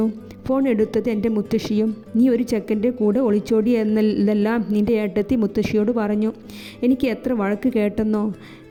ഫോൺ എടുത്തത് എൻ്റെ മുത്തശ്ശിയും. നീ ഒരു ചെക്കൻ്റെ കൂടെ ഒളിച്ചോടി എന്നതെല്ലാം നിൻ്റെ ഏട്ടത്തി മുത്തശ്ശിയോട് പറഞ്ഞു. എനിക്ക് എത്ര വഴക്ക് കേട്ടെന്നോ.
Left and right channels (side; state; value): both; identical; correlation 1.00